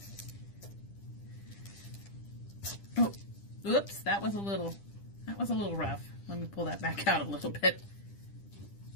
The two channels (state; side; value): late; right; 10 ms